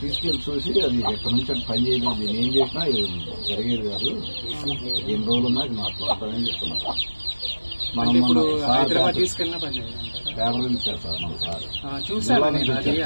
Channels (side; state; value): both; inverted; correlation -1.00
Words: తీసుకెళ్ళి చూసి అది ఎక్కడి నుంచి అది పని చేయలేదు, నేను ఏం చేసినా జరిగేది కాదు, ఎన్ని రోజులు ఉన్నా అది నాకు ఉంటుందని చెప్తున్నారు. మనం హైదరాబాద్ తీసుకెళ్ళిన పని పేపర్ ఇచ్చారు సార్ మన సార్, జిల్లా